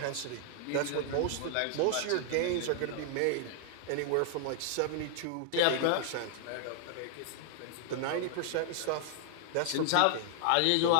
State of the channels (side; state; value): both; different; correlation 0.00